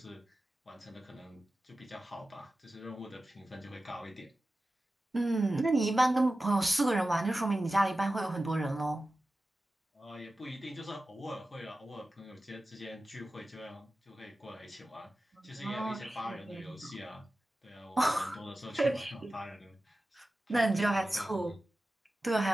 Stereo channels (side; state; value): both; normal; correlation 0.94